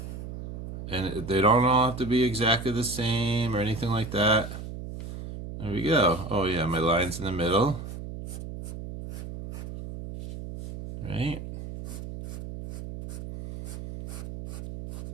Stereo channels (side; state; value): right; noise; hum, 9 dB below the sound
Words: And they don't all have to be exactly the same or anything like that. There we go. Oh yeah, my line's in the middle. Right?